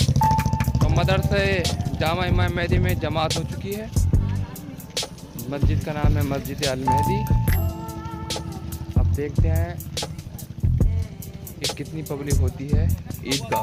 मदरसे जामा इमाम मेहदी में जमात हो चुकी है। मस्जिद का नाम है मस्जिद अल मेहदी। अब देखते हैं कि कितनी पब्लिक होती है ईदगाह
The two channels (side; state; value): both; identical; correlation 1.00